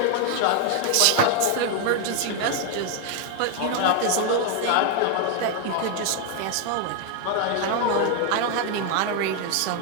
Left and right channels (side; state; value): both; different; correlation 0.01